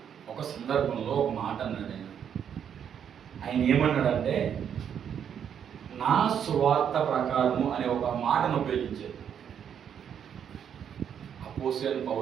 ఒక సందర్భంలో ఒక మాట అన్నాడు. ఆయన ఏమన్నాడంటే, నా సువార్త ప్రకారము అనే ఒక మాటను ఉపయోగించారు. అపోస్తలుడైన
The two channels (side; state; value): left; quieter; 8.4 dB